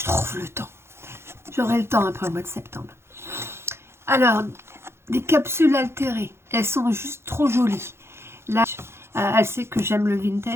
trouve le temps. J'aurai le temps après le mois de septembre. Alors, des capsules altérées. Elles sont juste trop jolies. Là, elle sait que j'aime le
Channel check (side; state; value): left; late; 0.12 ms